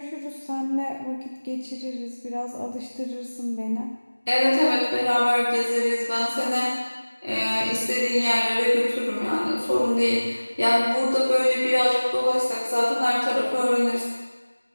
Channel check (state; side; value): inverted; both; correlation -1.00